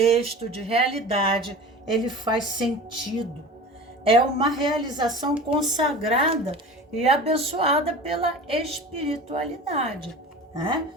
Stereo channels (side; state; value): both; normal; correlation 0.36